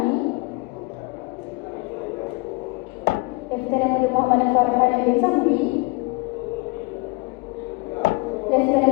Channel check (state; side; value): quieter; right; 25.6 dB